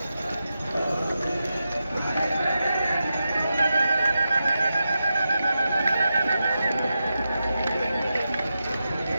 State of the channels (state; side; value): inverted; both; correlation -0.89